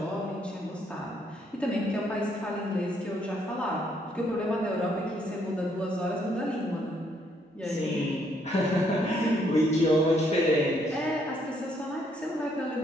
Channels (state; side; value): normal; both; correlation 0.70